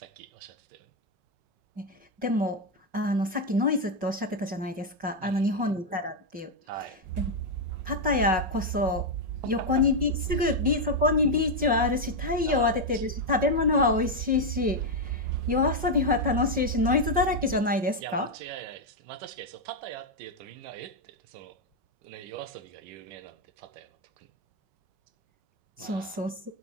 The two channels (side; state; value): left; late; 5.4 ms